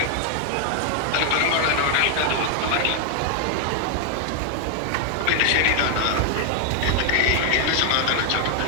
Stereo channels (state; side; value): different; both; correlation 0.00